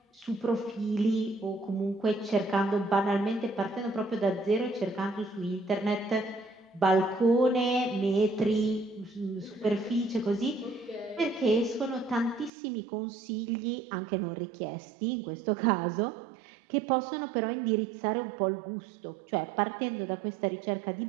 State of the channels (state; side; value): drops out; left; at 12.5 s